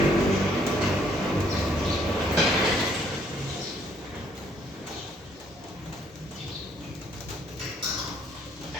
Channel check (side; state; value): both; normal; correlation 0.66